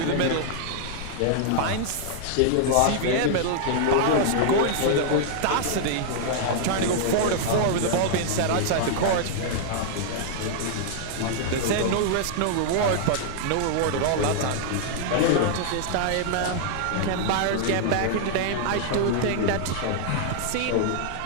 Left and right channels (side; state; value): both; different; correlation -0.01